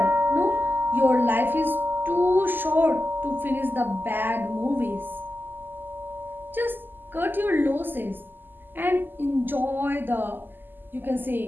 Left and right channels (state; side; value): late; left; 0.091 ms